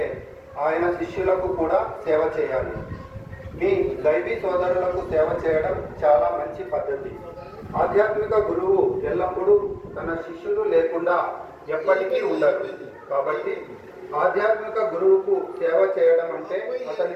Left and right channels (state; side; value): identical; both; correlation 1.00